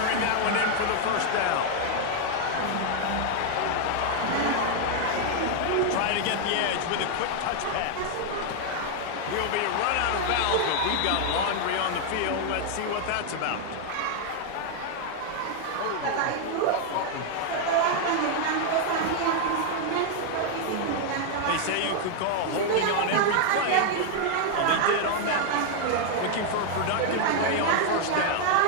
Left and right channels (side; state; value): both; different; correlation 0.00